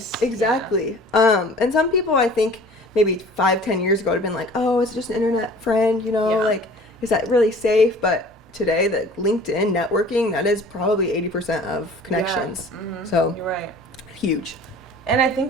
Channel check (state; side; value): normal; both; correlation 0.46